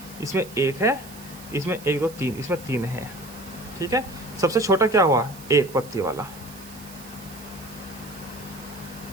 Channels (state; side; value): noise; right; hiss, 18 dB below the sound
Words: इसमें 1 है, इसमें 1, 2, 3, इसमें 3 है। ठीक है, सबसे छोटा क्या हुआ? 1 पत्ती वाला,